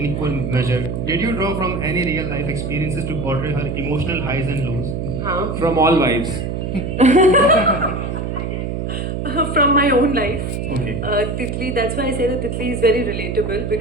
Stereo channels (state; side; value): noise; right; hum, 3 dB below the sound